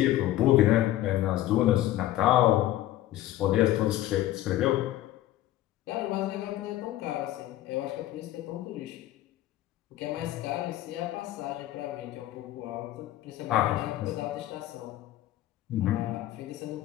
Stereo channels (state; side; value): quieter; right; 14.4 dB